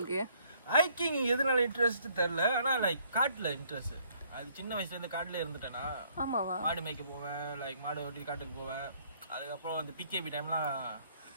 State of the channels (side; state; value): both; inverted; correlation -0.64